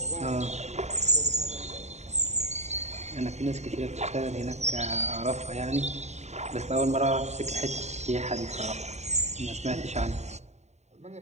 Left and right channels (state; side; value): late; left; 0.32 ms